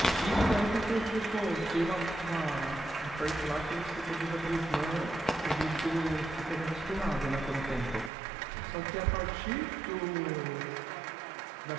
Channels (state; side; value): drops out; left; at 8.1 s